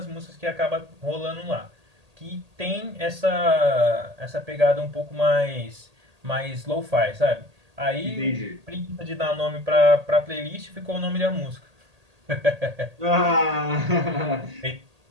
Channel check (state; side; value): late; left; 1.8 ms